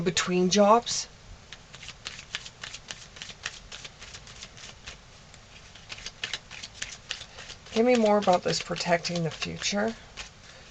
between jobs. Give me more about this protecting the future.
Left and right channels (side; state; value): both; identical; correlation 1.00